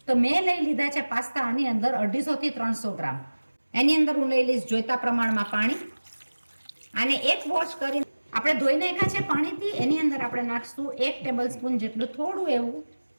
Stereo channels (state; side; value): inverted; both; correlation -1.00